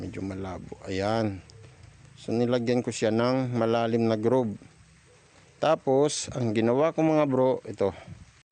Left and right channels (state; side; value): identical; both; correlation 1.00